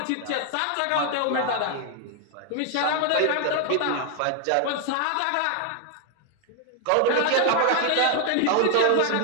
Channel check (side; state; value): both; different; correlation 0.00